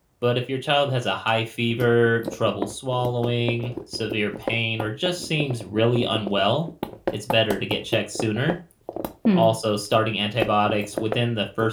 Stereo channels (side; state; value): both; identical; correlation 1.00